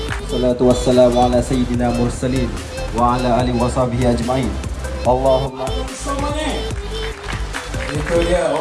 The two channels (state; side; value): identical; both; correlation 1.00